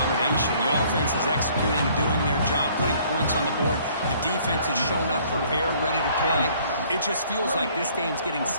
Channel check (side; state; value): both; inverted; correlation -0.59